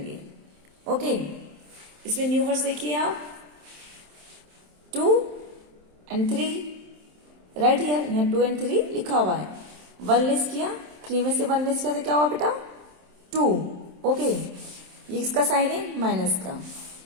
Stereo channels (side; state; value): left; late; 27 ms